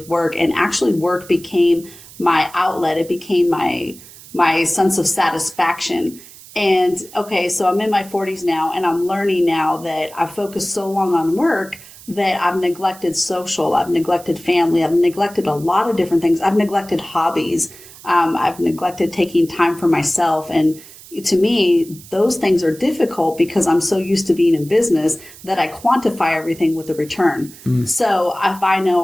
work, and actually work became my outlet. It became my sense of satisfaction. And okay, so I'm in my 40s now, and I'm learning now that I focused so long on work that I've neglected social, I've neglected family, I've neglected a lot of different things. I've neglected hobbies. I've neglected taking time for myself. And to me, those things are difficult because I'm so used to being in business that I quantify everything with a return. So if I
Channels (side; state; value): right; noise; hiss, 19 dB below the sound